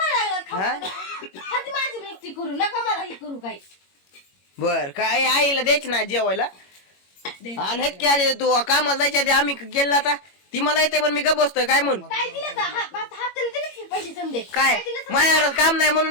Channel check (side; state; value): right; late; 21 ms